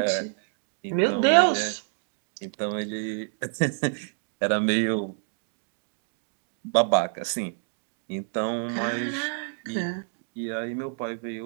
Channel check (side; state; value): left; silent; digital silence